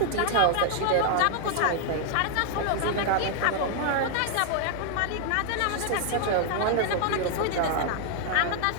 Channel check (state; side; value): different; both; correlation 0.00